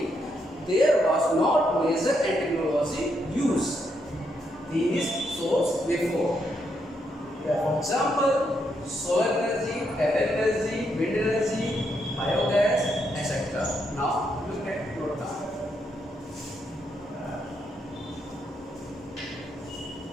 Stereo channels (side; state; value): both; normal; correlation 0.78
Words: there was not major and technology used these sources before. For example, solar energy, tidal energy, wind energy, biogas, etc. Now look at note down.